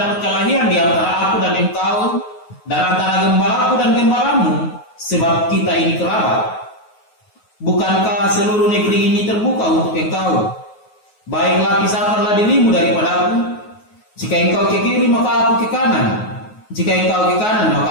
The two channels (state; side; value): late; right; 9.4 ms